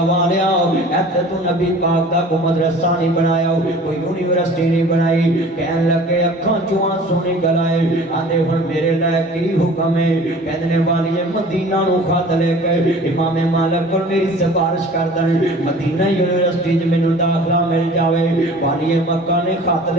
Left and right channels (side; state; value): both; normal; correlation 0.45